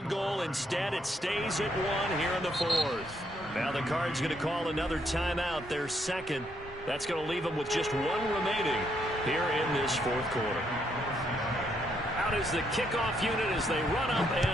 goal. Instead, it stays at 1 here in the 4th. Now the Cards going to call another timeout, their second. That's going to leave them with just 1 remaining here in this 4th quarter. Out is the kickoff unit as they run up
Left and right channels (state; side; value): normal; both; correlation 0.74